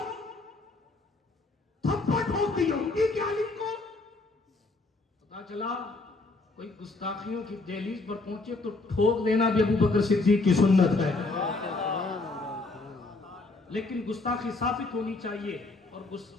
تھپڑ ٹھوک دی یہودی کے عالم کو. پتا چلا کوئی گستاخیوں کی دہلیز پر پہنچے تو ٹھوک دینا بھی ابو بکر صدیق کی سنت ہے. لیکن گستاخی ثابت ہونی چاہیے اور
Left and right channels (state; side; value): quieter; right; 3.4 dB